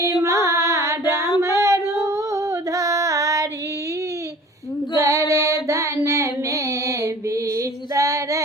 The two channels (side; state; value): both; normal; correlation 0.46